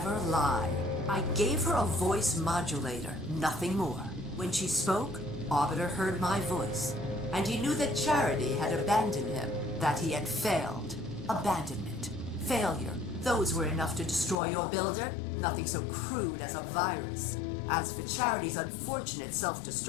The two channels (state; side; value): drops out; right; at 14.4 s